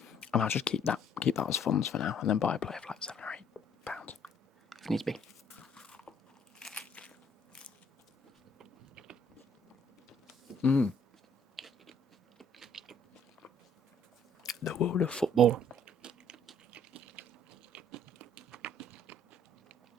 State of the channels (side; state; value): both; normal; correlation 0.61